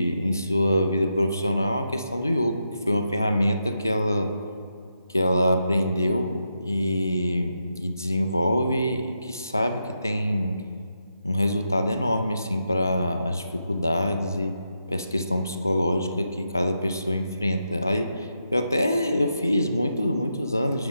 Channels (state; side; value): inverted; both; correlation -0.84